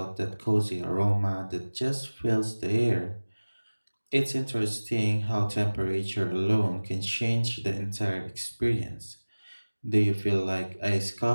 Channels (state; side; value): inverted; both; correlation -1.00